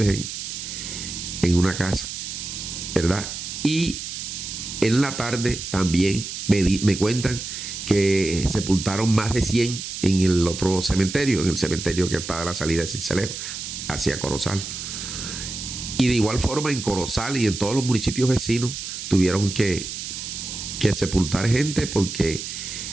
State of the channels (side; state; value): right; noise; hiss, 7 dB below the sound